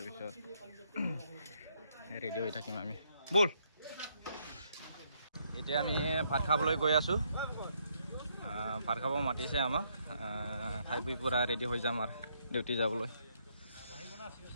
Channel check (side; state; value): both; inverted; correlation -0.73